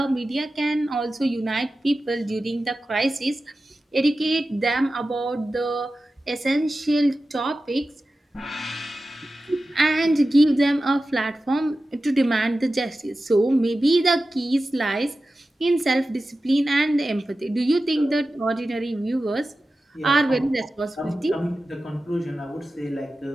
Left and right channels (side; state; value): both; normal; correlation 0.94